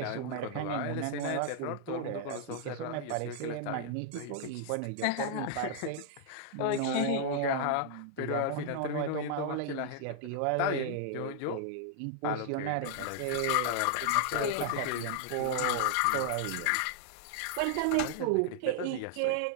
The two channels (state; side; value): different; both; correlation -0.01